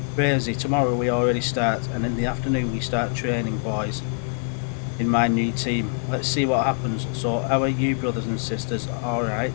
Crazy, tomorrow we already start, and in the afternoon we start training, boys, in my new team. Let's see what happens. So how are you, brothers and sisters?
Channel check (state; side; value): silent; right; 61 dB below the other